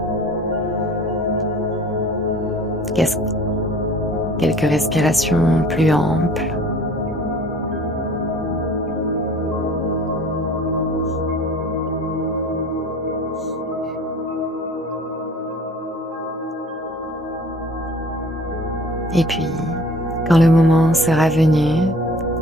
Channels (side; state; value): both; normal; correlation 0.47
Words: Quelques respirations plus amples. Et puis, quand le moment sera venu,